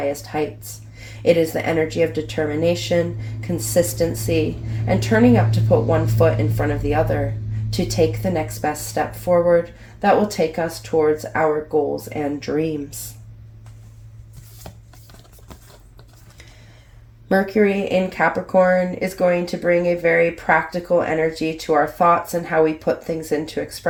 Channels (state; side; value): identical; both; correlation 1.00